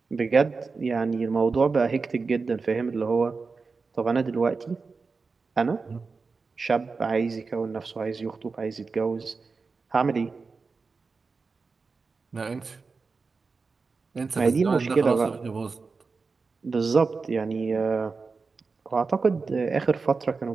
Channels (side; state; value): left; quieter; 4.5 dB